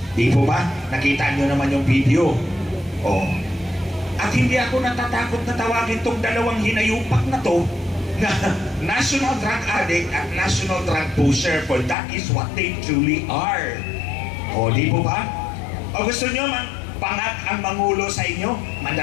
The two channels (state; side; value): drops out; right; at 12.0 s